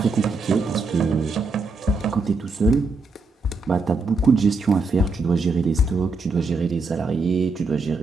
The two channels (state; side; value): quieter; left; 3.6 dB